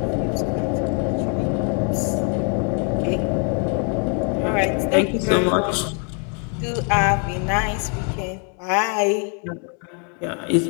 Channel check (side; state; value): right; quieter; 39.1 dB